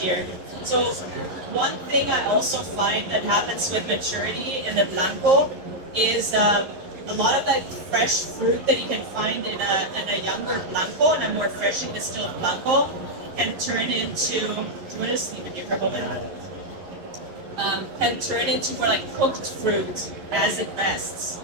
year. So one thing I also find that happens with maturity in the Blanco is a lot of that fresh fruit that you can find in a younger blanco and a more freshly distilled blanco can turn into. Do you want to just leave it here for a moment? Can turn into more like cooked fruit as it rests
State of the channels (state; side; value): late; left; 11 ms